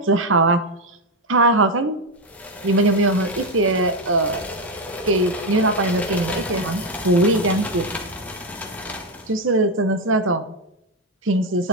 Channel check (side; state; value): both; normal; correlation 0.07